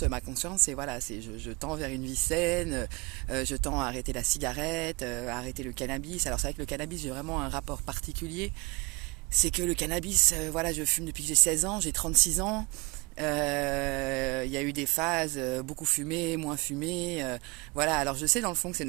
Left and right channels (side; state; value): left; quieter; 27.3 dB